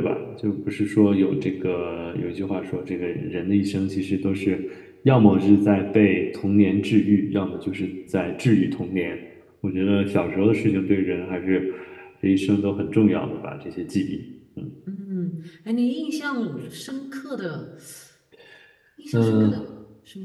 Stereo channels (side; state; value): both; identical; correlation 1.00